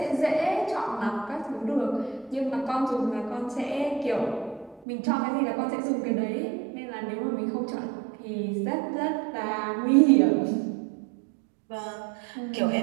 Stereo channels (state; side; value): drops out; left; at 4.9 s